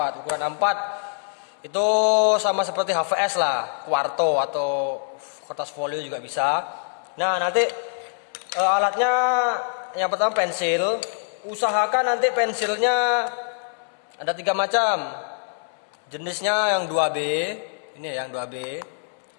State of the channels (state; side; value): silent; right; 62 dB below the other